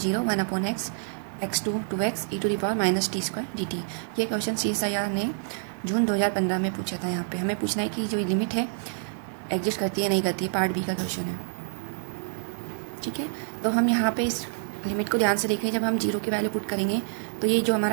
1 upon x x2 2x e to the power minus t square dt। ये क्वेश्चन CSIR ने जून 2015 में पूछा था। यहाँ पे हमें पूछना है कि जो लिमिट है एग्जिस्ट करती है नहीं करती है। पार्ट बी का क्वेश्चन है, ठीक है। तो हम यहाँ पे इस लिमिट को ध्यान से देखें। जब हम 0 की वैल्यू पुट करेंगे तो ये जो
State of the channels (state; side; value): silent; left; digital silence